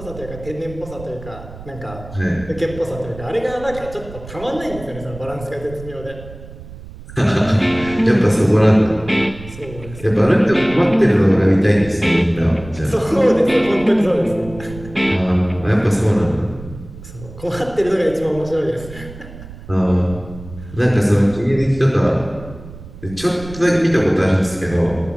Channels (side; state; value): right; noise; rumble, 16 dB below the sound